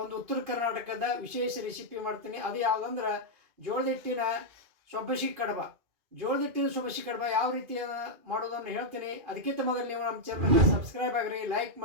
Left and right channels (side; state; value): left; late; 2.4 ms